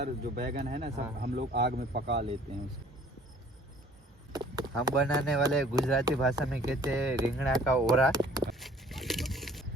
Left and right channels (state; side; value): normal; both; correlation 0.54